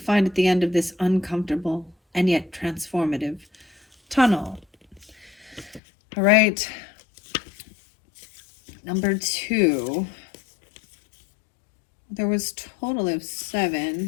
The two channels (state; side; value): drops out; right; at 5.8 s